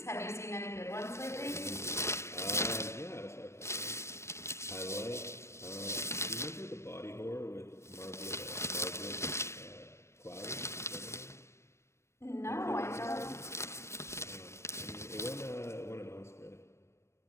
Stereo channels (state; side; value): late; right; 0.13 ms